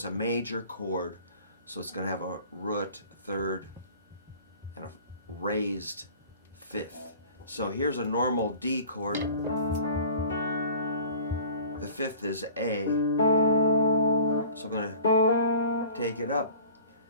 a major chord, so it's going to have a root third and a raised fifth. So here's a normal D chord. The fifth is A. So I'm going to take it up.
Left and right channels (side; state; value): both; inverted; correlation -0.46